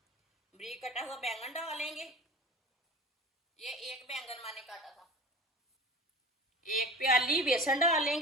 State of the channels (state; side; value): normal; both; correlation 0.35